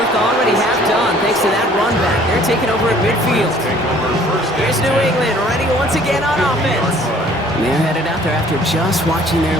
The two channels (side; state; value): both; normal; correlation 0.56